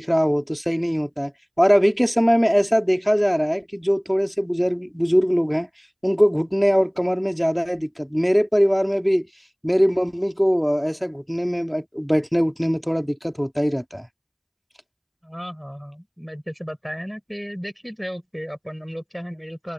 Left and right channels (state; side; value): identical; both; correlation 1.00